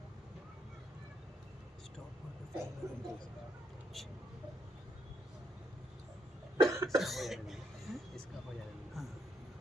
اس کا ہو جائے گا۔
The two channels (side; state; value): both; normal; correlation 0.77